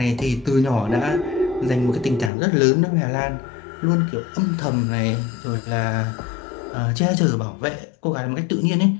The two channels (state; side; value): drops out; right; at 2.3 s